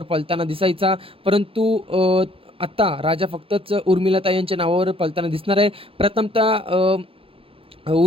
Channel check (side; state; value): left; late; 0.27 ms